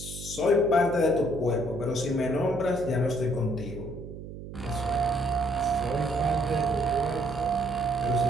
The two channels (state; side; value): noise; right; hum, 11 dB below the sound